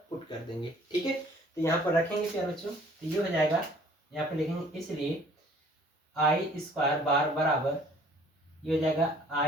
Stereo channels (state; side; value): normal; both; correlation 0.55